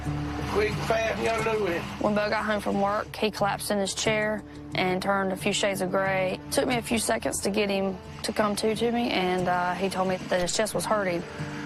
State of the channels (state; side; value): identical; both; correlation 1.00